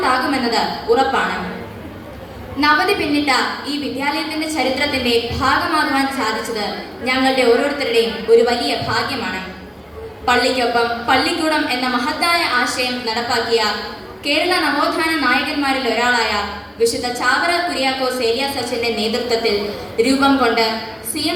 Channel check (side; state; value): both; identical; correlation 1.00